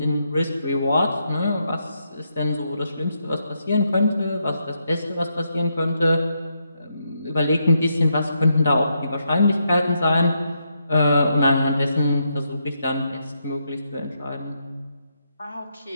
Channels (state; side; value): inverted; both; correlation -0.80